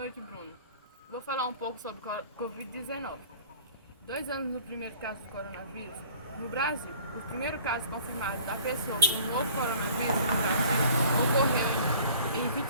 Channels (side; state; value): both; inverted; correlation -0.50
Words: Bruno. Vou falar um pouco sobre Covid-19. 2 anos no primeiro caso do coronavírus. No Brasil, o primeiro caso confirmado da pessoa com o novo coronavírus no Brasil ocorreu em